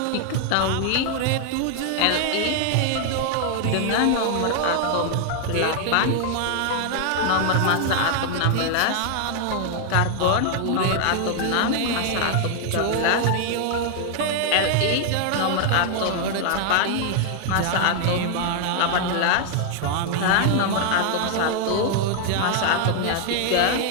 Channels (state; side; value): different; both; correlation 0.00